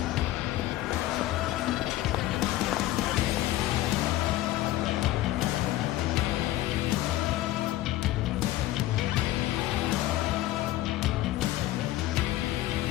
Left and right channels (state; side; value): quieter; right; 15.5 dB